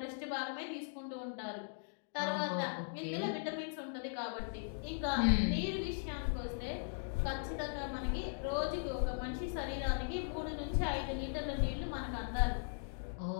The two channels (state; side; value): silent; right; digital silence